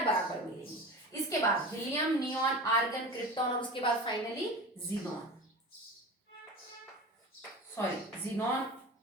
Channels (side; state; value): both; normal; correlation 0.32